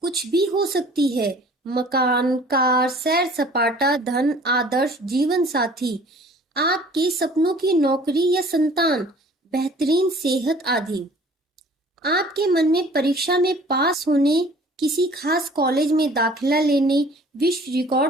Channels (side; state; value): both; normal; correlation 0.51